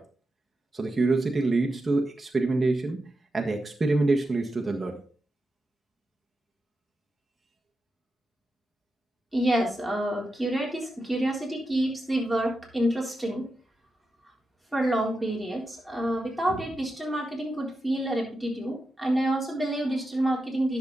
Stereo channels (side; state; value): both; normal; correlation 0.89